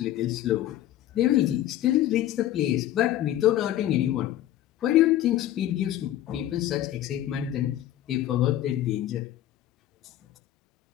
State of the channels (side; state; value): right; quieter; 12.9 dB